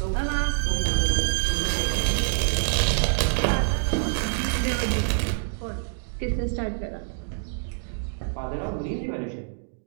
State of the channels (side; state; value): left; silent; digital silence